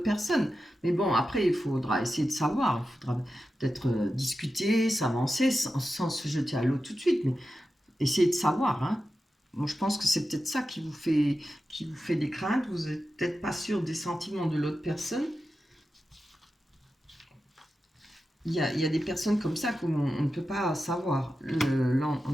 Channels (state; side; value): normal; both; correlation 0.91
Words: personne. Mais bon, après, il faudra essayer de savoir. Il faudra peut-être discuter, s'avancer, sans se jeter à l'eau tout de suite. Mais essayer de savoir. Hein. Moi, je pense que c'est peut-être ça qui vous fait des craintes. Vous n'êtes peut-être pas sûr des sentiments de l'autre personne. Il y a des personnes comme ça qu'on ne peut pas savoir.